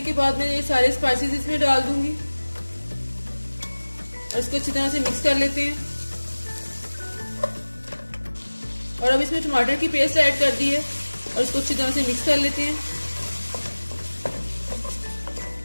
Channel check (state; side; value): inverted; both; correlation -1.00